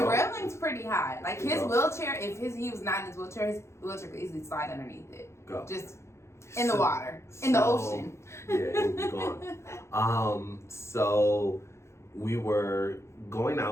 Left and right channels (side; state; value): right; late; 0.13 ms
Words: railing's pretty high. Like his wheelchair, if he was not in his wheelchair could easily slide underneath it. Just in the water, in the ocean. Yeah, it would be gone. So we were going